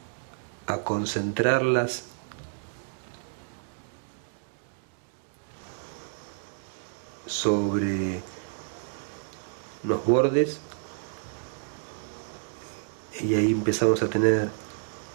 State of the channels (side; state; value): left; silent; digital silence